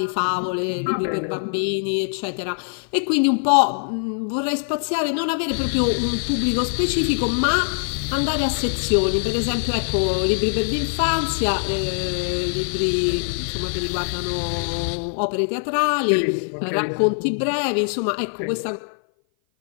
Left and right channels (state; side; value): silent; right; 57 dB below the other